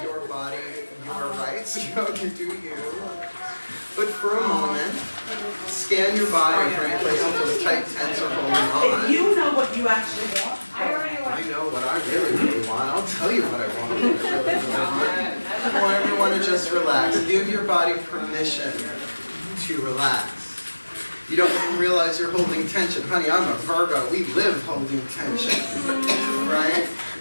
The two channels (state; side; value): inverted; both; correlation -1.00